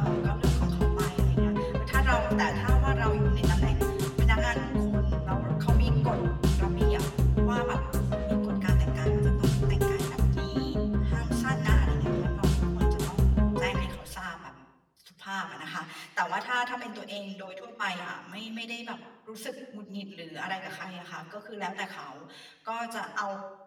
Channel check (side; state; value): both; identical; correlation 1.00